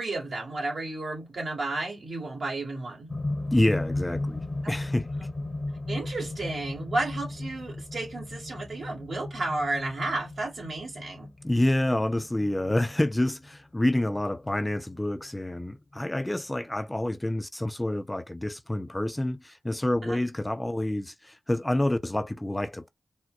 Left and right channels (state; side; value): normal; both; correlation 0.97